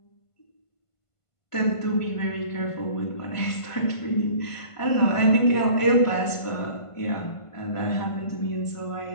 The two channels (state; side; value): late; right; 1.5 ms